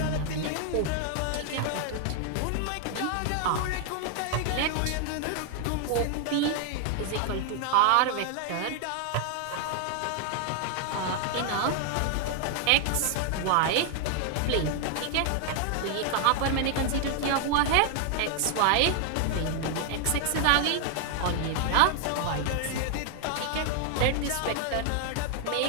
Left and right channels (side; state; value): both; different; correlation 0.00